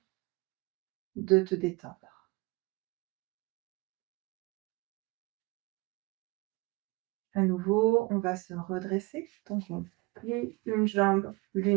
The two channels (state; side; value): quieter; left; 24.9 dB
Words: de te détendre. À nouveau, on va se redresser. Donc, on plie une jambe